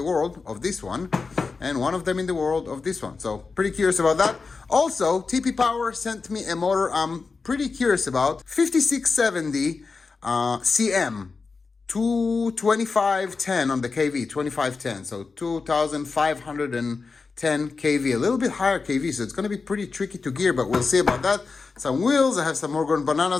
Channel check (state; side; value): quieter; right; 4.5 dB